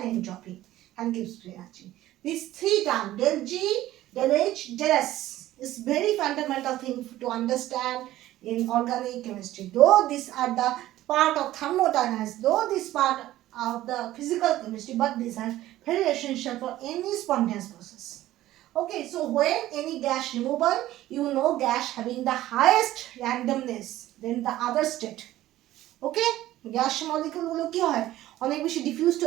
entropy and gives energy. These three terms, del G, del H, del S, is very fundamental thing to understand in organic chemistry. Though these are the part of thermodynamics, though this part of the physical chemistry, but these are very essential for any spontaneous process. Okay, so when any gas removal, you know gas having the highest randomness than the other state. Okay, gas মলিকিউলগুলো কি হয়, অনেক বেশি diffused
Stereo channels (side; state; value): left; quieter; 14.8 dB